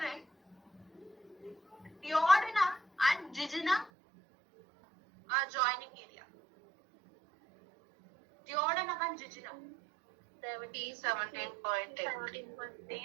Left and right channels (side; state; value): left; drops out; at 3.9 s